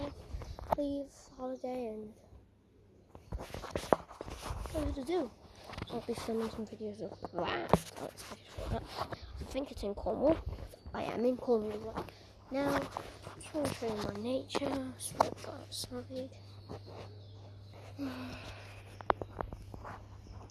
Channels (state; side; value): identical; both; correlation 1.00